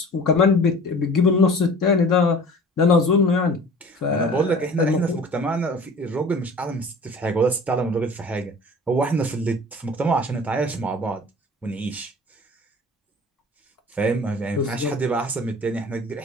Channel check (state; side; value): normal; both; correlation 0.44